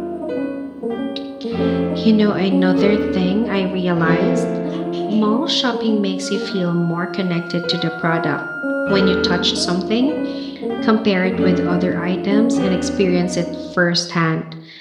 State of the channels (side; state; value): both; identical; correlation 1.00